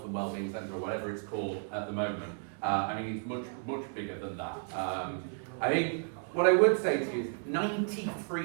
and wellbeing centre or whatever it's called at the moment. I mean, it's much bigger than that. I think what I would say to you is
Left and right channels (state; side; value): silent; left; 56 dB below the other